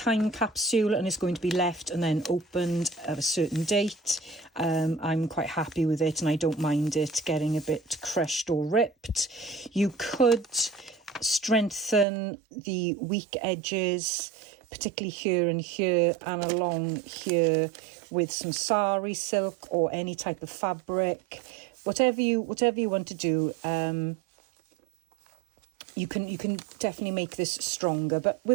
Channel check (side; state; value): left; drops out; at 12.1 s